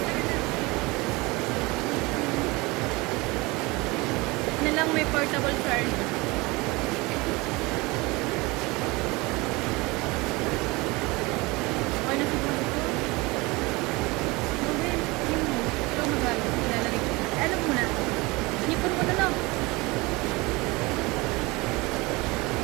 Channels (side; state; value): left; quieter; 23.7 dB